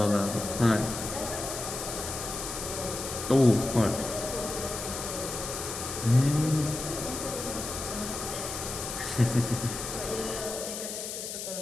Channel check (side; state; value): left; noise; hiss, 6 dB below the sound